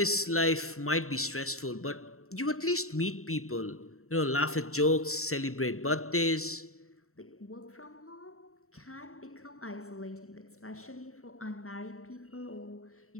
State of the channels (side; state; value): right; late; 0.63 ms